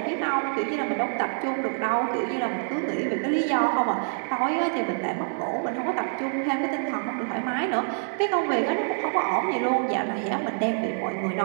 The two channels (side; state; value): left; silent; 60 dB below the other